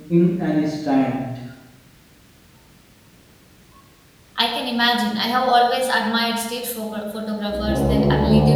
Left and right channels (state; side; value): identical; both; correlation 1.00